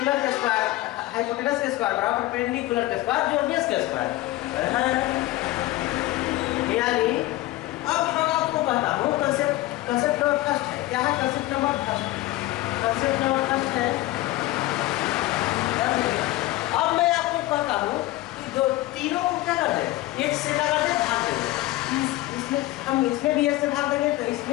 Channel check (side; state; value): right; quieter; 17.3 dB